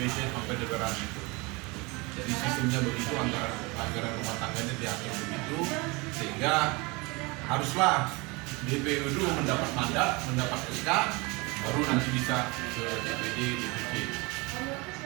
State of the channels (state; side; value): quieter; left; 26.2 dB